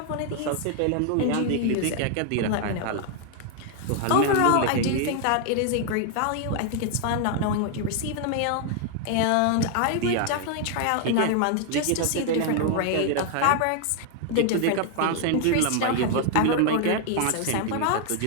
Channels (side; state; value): both; different; correlation 0.00